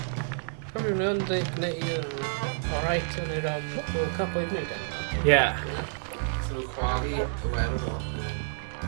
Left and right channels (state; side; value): silent; left; digital silence